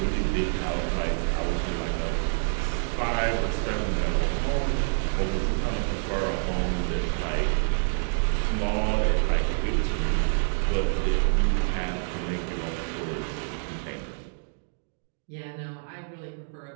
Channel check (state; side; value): silent; left; digital silence